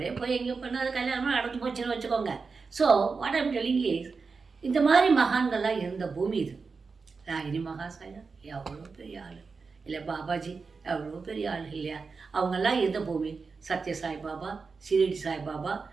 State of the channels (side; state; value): left; quieter; 4.7 dB